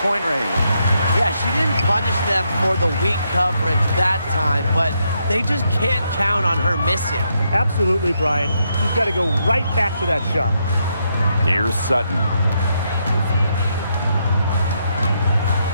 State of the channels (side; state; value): both; inverted; correlation -0.79